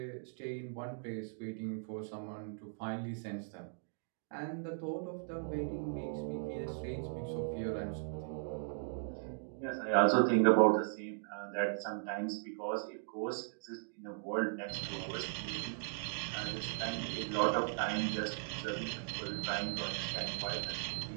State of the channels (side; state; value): left; silent; digital silence